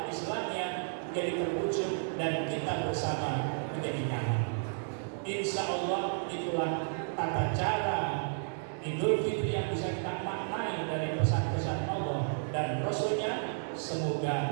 Islamnya jadi terwujud dan kita bersama menjadi nyaman. Insya Allah itulah tata cara Idul Fitri yang bisa kita maknai dari pesan-pesan Allah dan Rasulnya.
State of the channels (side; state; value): left; silent; digital silence